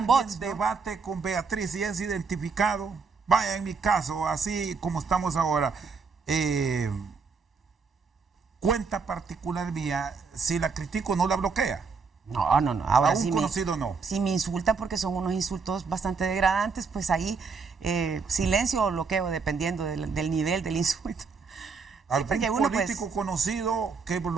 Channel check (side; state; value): left; quieter; 5.0 dB